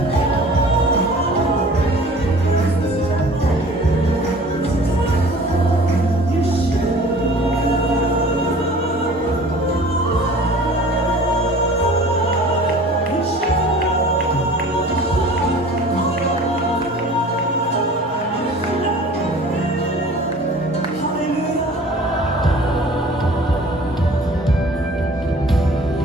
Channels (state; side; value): normal; both; correlation 0.46